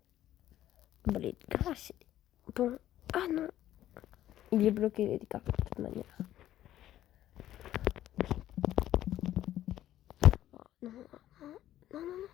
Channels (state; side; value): quieter; right; 12.9 dB